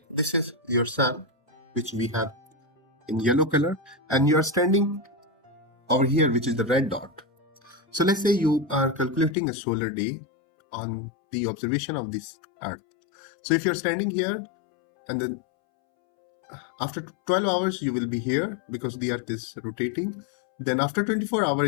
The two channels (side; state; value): right; drops out; at 9.3 s